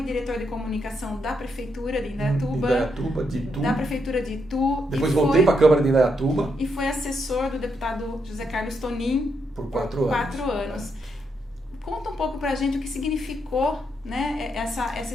diretor de comunicação da Prefeitura de Indaiatuba, de Itu. da Prefeitura de Itu. Depois voltei para a Câmara de Indaiatuba. E foi assessor do deputado José Carlos Tonin por 4 anos. Conta um pouco pra gente o que significou, né, essa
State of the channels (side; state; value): both; normal; correlation 0.79